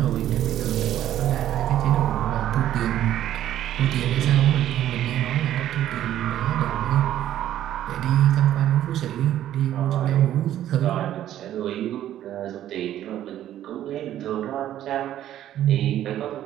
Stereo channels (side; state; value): left; quieter; 12.1 dB